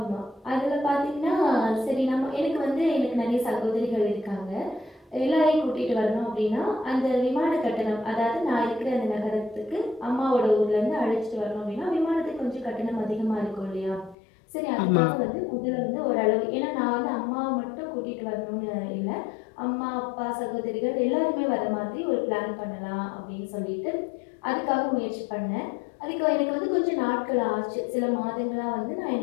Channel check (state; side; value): drops out; right; at 14.2 s